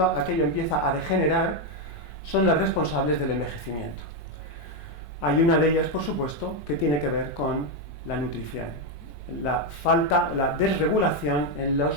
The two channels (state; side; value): normal; both; correlation 0.04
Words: aquello empieza a degenerar son las responsables del envejecimiento. Hay una de ellas, por supuesto, que tiene que ver con la nutrición, la desregulación en